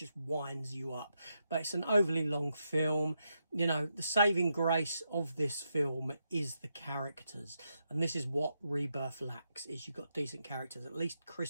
winds you up. But it's an overly long film. The saving grace of this film is the characters, and this is what Rebirth lacks. Is you've got decent characters. At least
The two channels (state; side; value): inverted; both; correlation -0.83